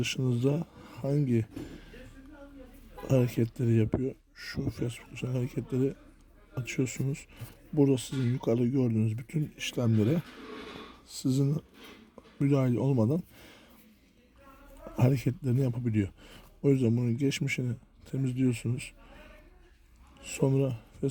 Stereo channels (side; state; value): both; identical; correlation 1.00